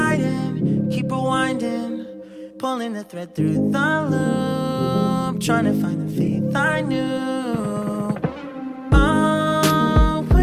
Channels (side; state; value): both; identical; correlation 1.00